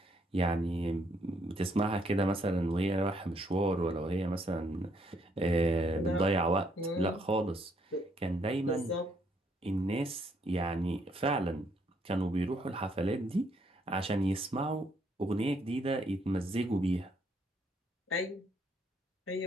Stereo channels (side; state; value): both; normal; correlation 0.71